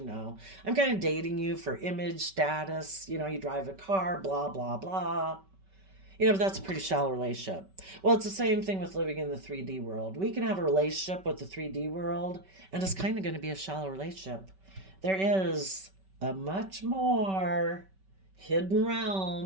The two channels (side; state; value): left; late; 5.2 ms